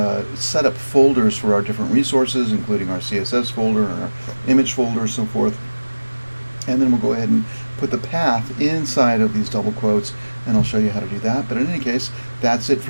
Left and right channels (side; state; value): both; inverted; correlation -1.00